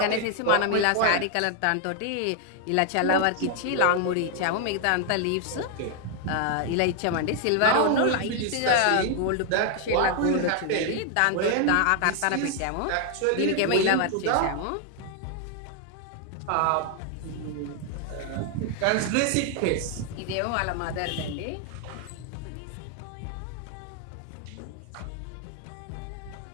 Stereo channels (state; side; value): different; both; correlation 0.00